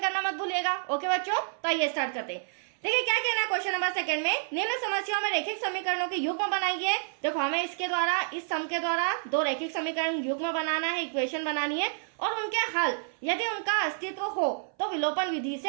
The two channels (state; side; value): silent; left; 58 dB below the other